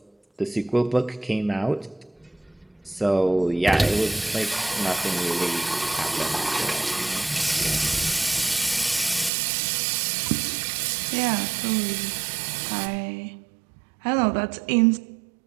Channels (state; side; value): drops out; left; at 9.3 s